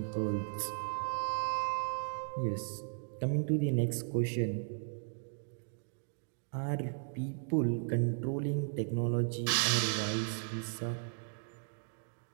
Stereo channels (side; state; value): left; silent; digital silence